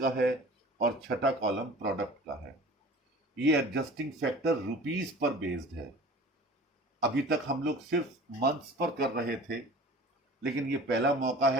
है और छठा कॉलम प्रोडक्ट का है। ये एडजस्टिंग फैक्टर रुपीस पर बेस्ड है। अभी तक हम लोग सिर्फ मंथ्स पर कर रहे थे, लेकिन ये पहला मौका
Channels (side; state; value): both; normal; correlation 0.42